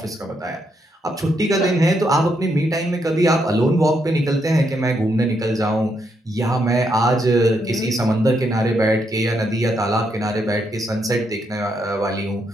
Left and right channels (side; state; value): both; normal; correlation 0.78